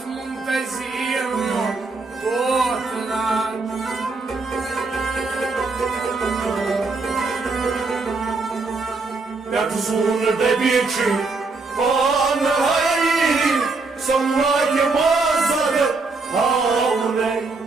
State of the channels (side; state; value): left; quieter; 3.8 dB